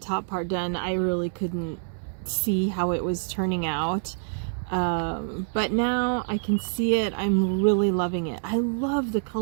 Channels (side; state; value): left; silent; 61 dB below the other